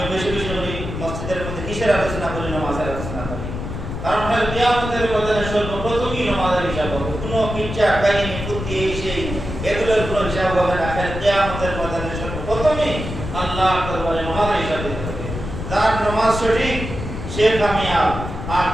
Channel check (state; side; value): noise; left; rumble, 6 dB below the sound